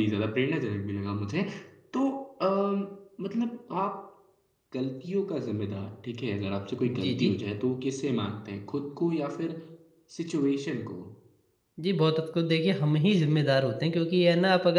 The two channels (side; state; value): both; identical; correlation 1.00